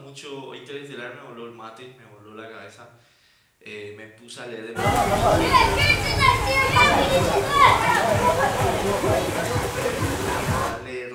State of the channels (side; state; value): both; identical; correlation 1.00